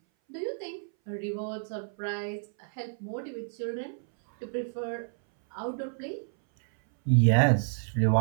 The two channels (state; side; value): silent; left; 58 dB below the other